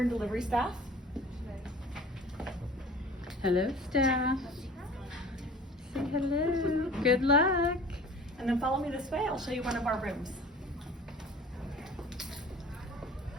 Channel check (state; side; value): normal; both; correlation 0.44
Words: delivery staff. Hello, staff. Say hello. Good luck. And then follow me this way. I'll show you one of our rooms.